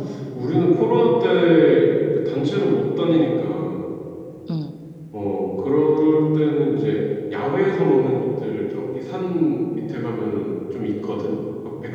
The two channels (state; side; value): identical; both; correlation 1.00